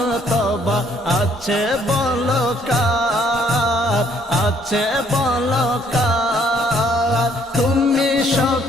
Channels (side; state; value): both; normal; correlation 0.65